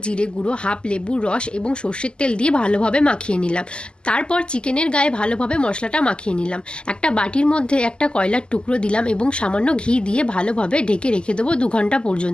জিরে গুঁড়ো, হাফ লেবুর রস এবং সর্ষের তেল দিয়ে ভালোভাবে মাখিয়ে নিলাম। তারপর চিকেনের গায়ে ভালোভাবে মশলাটা মাখিয়ে নিলাম। একটা বাটির মধ্যে একটা কয়লার টুকরো দিলাম এবং সামান্য ঘি দিয়ে ভালোভাবে ঢেকে রেখে দেবো 2 ঘন্টা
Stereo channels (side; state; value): right; late; 0.049 ms